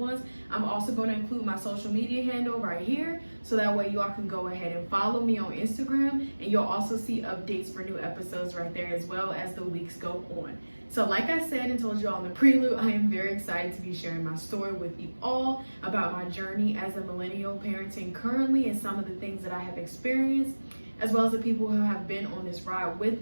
I'm also going to include my social media handle right here so that way y'all can go ahead and follow me on Instagram, and you'll also see updates for new episodes right there as well as the weeks go on. So like I said and told you all in the prelude, I am very excited to be sharing my story with you all about my journey as a millennial parenting currently and some of the things that I have experienced, as well as the people who have been on this ride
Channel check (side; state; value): both; inverted; correlation -1.00